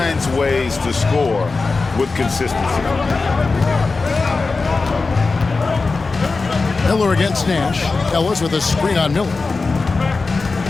ways to score with consistency. Miller against Nash. Ellis with a screen on Miller.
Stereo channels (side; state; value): right; quieter; 4.0 dB